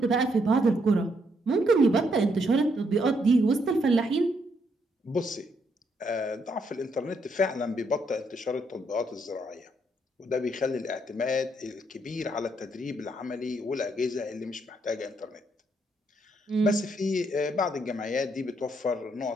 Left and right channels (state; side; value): normal; both; correlation 0.74